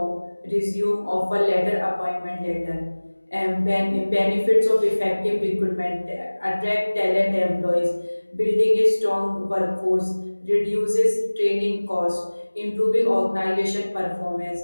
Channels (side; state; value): both; inverted; correlation -1.00